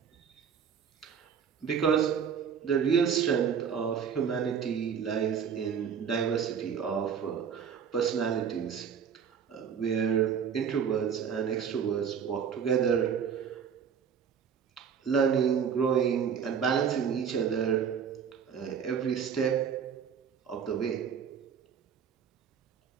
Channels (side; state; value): left; quieter; 7.3 dB